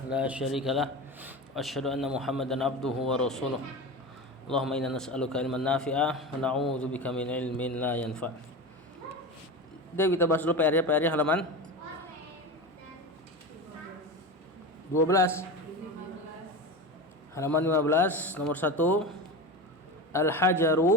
لا شريك له وأشهد أن محمدا عبده ورسوله اللهم إنا نسألك علما نافعا ونعوذ بك من علم لا ينفع. Jadi kita bahas dulu PR-nya halaman 12. Halaman 15 nomor 1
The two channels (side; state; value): both; normal; correlation 0.25